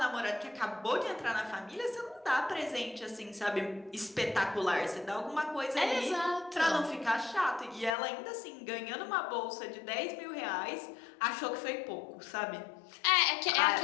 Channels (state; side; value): drops out; right; at 8.0 s